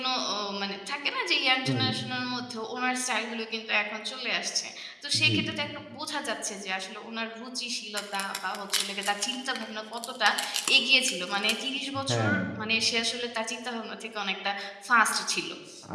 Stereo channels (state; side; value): identical; both; correlation 1.00